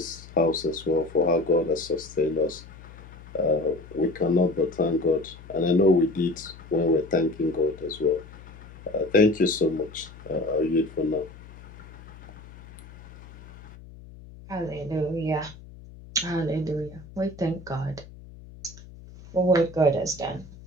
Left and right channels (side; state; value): left; noise; hum, 18 dB below the sound